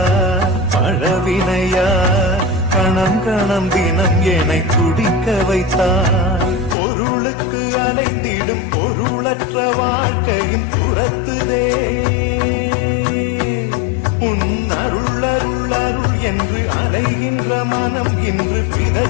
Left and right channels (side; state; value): right; drops out; at 6.8 s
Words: பழவினையா கணம் கணம் தினம் என்னை துடிக்க வைத்தாய் பொருளுக்கு அலைந்திடும் பொருளற்ற வாழ்க்கையும் துரத்துதே உன் அருள் அருள் அருள் என்று அலைகின்ற மனம் இன்று